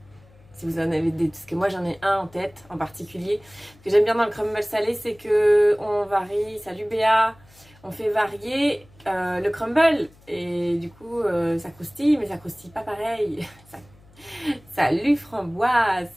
Si vous en avez des, parce que moi j'en ai un en tête en particulier. Ce que j'aime bien dans le crumble salé, c'est que on varie, salut Béa, on fait varier le crumble et du coup ça croustille, mais ça croustille pas pareil. Salut Framboise,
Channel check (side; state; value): left; noise; hum, 27 dB below the sound